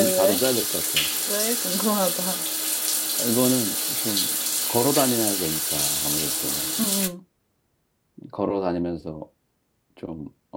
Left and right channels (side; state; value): both; identical; correlation 1.00